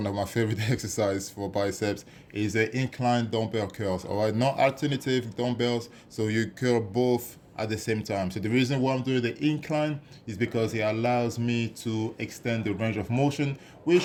of my favorite exercises for biceps, is the incline dumbbell curls, all right? Not alternative dumbbells, so you curl both at the same time. So the reason why I'm doing the incline is because it allows me to extend the range of motion,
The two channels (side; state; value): both; identical; correlation 1.00